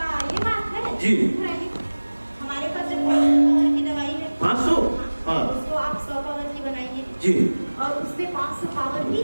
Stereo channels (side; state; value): both; inverted; correlation -1.00